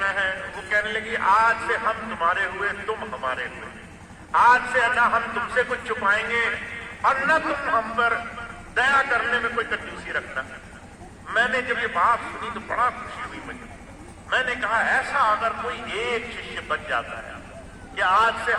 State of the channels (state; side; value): identical; both; correlation 1.00